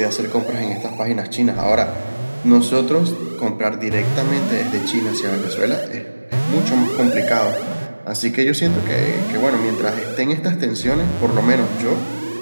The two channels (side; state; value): both; inverted; correlation -1.00